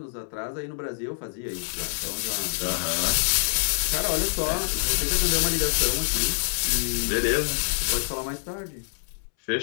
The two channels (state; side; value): silent; right; 61 dB below the other